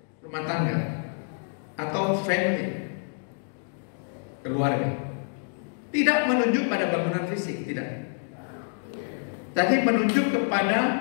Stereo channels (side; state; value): right; silent; digital silence